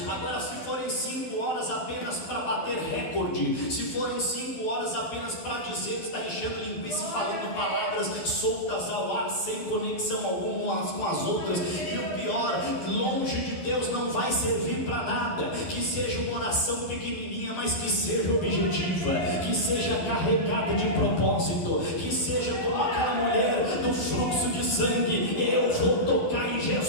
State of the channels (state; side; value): late; right; 12 ms